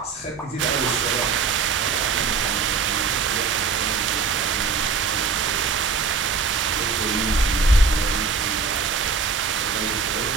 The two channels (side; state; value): left; quieter; 5.0 dB